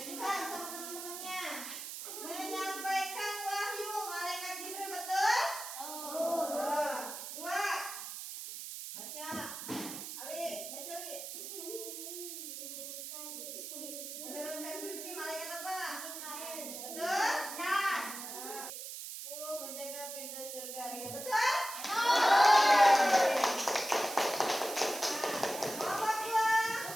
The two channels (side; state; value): right; noise; hiss, 8 dB below the sound